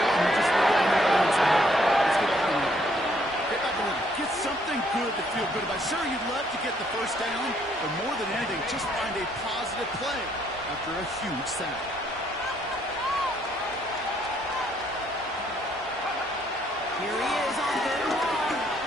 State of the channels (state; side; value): normal; both; correlation 0.68